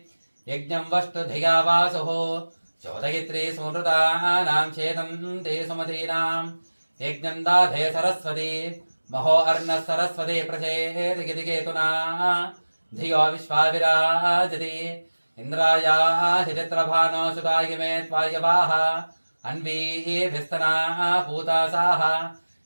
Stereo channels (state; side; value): inverted; both; correlation -1.00